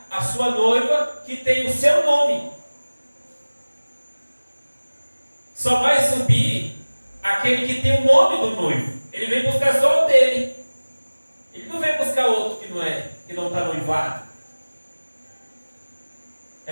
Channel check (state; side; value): inverted; both; correlation -1.00